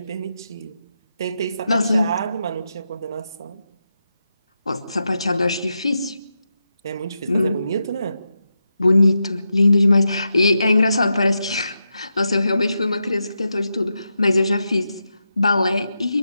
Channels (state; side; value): inverted; both; correlation -0.87